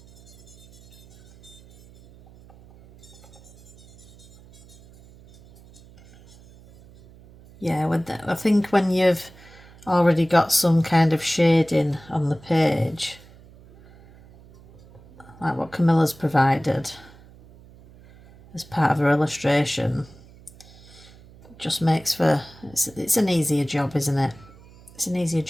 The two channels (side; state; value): right; noise; hum, 23 dB below the sound